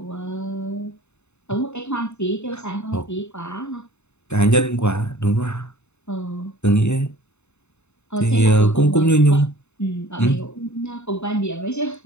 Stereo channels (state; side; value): late; right; 0.82 ms